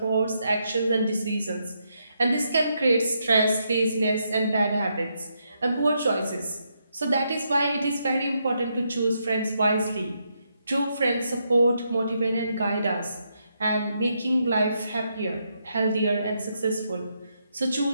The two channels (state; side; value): inverted; both; correlation -0.79